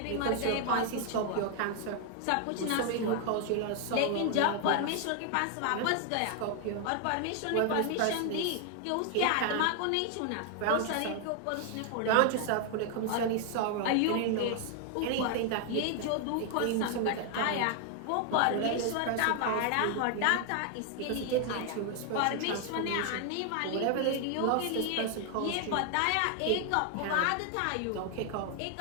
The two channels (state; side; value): different; both; correlation 0.00